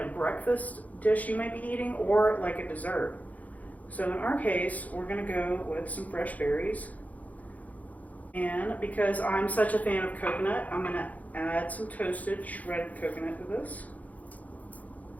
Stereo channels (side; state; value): right; late; 0.075 ms